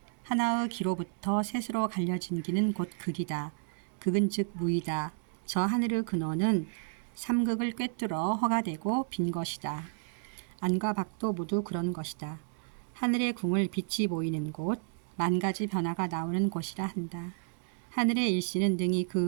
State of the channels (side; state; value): left; silent; digital silence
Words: 하나의 기로부터 셋으로 갈려진 기는 곧 극이다. 극은 즉 무이다. 저 하늘의 근원은 삼극을 꿰뚫어 허가 되고 빈 것이다. 안과 밖도 모두 그런 것이다. 하늘의 궁을 빛이 보이는 곳, 만 가지 변화가 나오는 곳이라 한다. 하늘의 일시는 능히